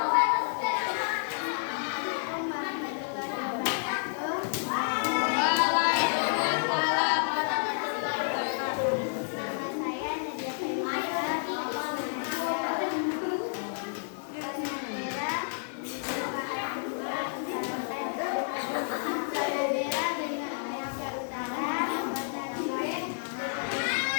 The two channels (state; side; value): silent; right; digital silence